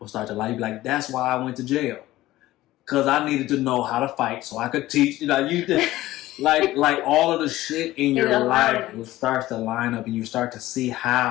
start to like, that's why I went to jail, because I needed to know how to fight so I could teach. Like all of the shit in your life will start to line up, and you start to see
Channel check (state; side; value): quieter; right; 16.4 dB